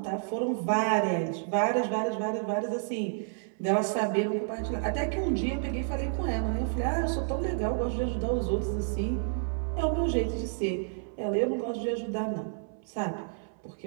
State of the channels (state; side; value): silent; left; 58 dB below the other